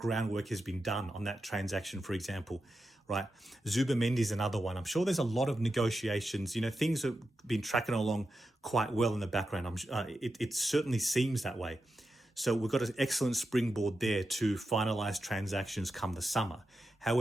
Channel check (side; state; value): both; normal; correlation 0.89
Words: has been done on that transaction, for example, right? Zubimendi is another one. I'm sure there's a lot of negotiations. Things have been tracking along quite well in the background. It certainly seems that way. So we've got an excellent springboard there to finalize transactions come the summer.